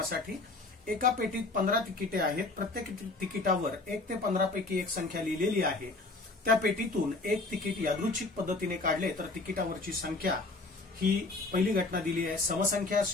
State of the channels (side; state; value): right; quieter; 3.3 dB